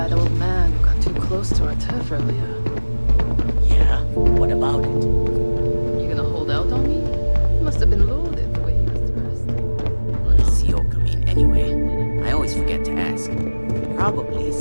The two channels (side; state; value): both; inverted; correlation -1.00